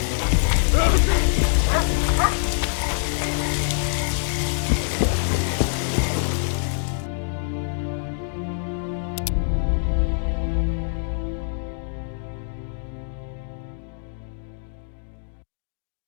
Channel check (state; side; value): silent; right; digital silence